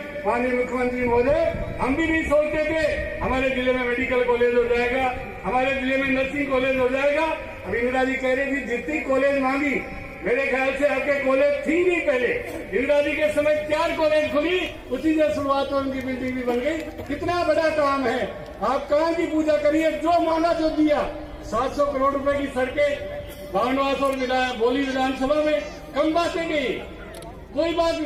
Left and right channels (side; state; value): both; identical; correlation 1.00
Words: माननीय मुख्यमंत्री महोदय हम भी नहीं सोचते थे हमारे जिले में मेडिकल कॉलेज हो जाएगा, हमारे जिले में नर्सिंग कॉलेज हो जाएगा। अब इंदिरा जी कह रही थी जितनी कॉलेज मांगी, मेरे ख्याल से आपके कॉलेज थी नहीं पहले, इंदिरा जी के समय 4 कॉलेज खुली, उसी से शुरुआत उनकी बिल्डिंग भी बन गई। कितना बड़ा काम है, आप कहाँ की पूजा करिए, जो माना जो दिया। 700 करोड़ रुपए की सड़कें बामनवास और बोली विधानसभा में कम बातें गई, कोई बात,